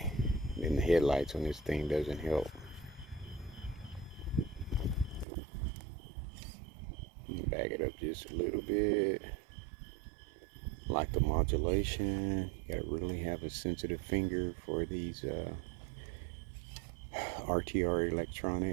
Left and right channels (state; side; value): drops out; left; at 5.2 s